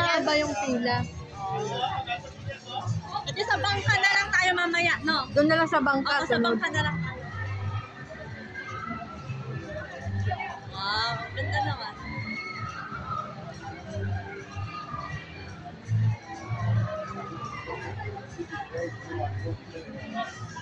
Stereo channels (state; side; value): identical; both; correlation 1.00